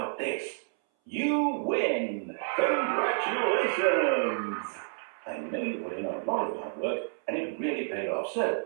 this? You win! Congratulations! I know you put in a lot of hard work, and it really paid off, so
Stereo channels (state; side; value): silent; left; 58 dB below the other